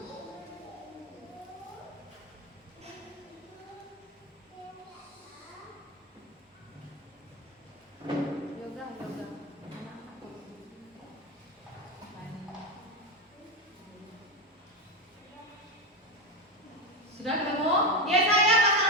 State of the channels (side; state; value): both; normal; correlation 0.14